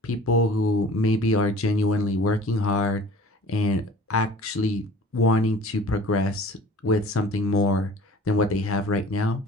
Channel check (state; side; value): normal; both; correlation 0.46